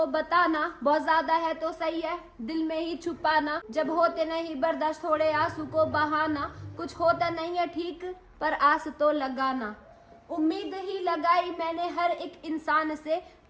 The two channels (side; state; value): both; identical; correlation 1.00